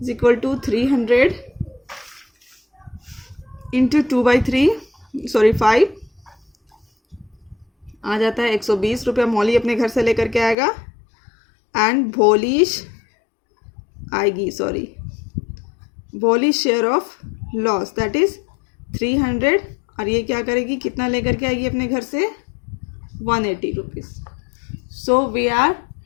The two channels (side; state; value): right; drops out; at 10.6 s